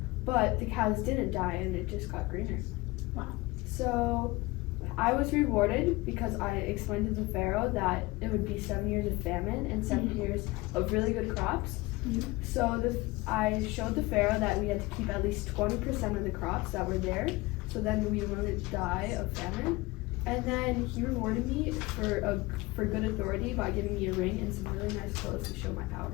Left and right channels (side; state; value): right; quieter; 22.0 dB